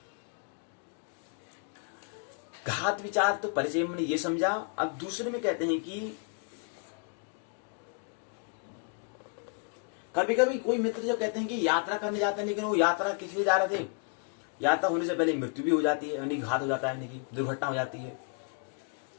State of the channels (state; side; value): quieter; right; 37.0 dB